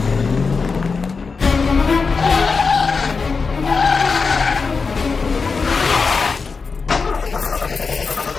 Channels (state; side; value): quieter; right; 4.8 dB